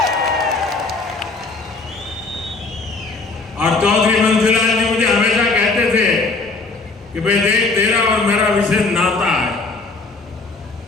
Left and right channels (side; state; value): right; quieter; 3.7 dB